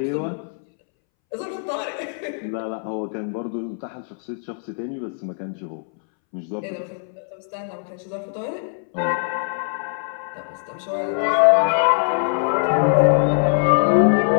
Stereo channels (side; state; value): right; silent; 64 dB below the other